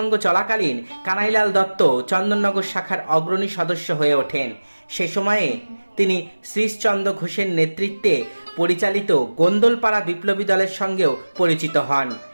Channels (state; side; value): inverted; both; correlation -1.00